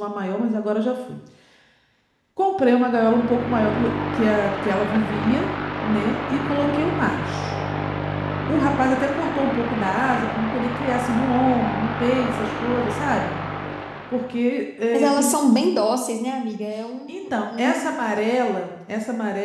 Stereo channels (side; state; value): both; identical; correlation 1.00